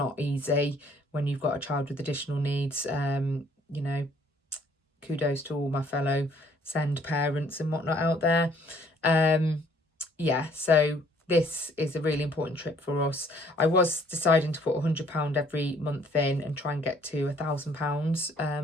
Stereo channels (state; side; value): normal; both; correlation 0.61